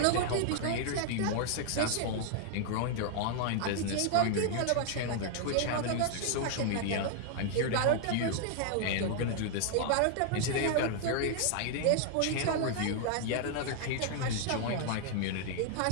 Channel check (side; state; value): both; different; correlation 0.00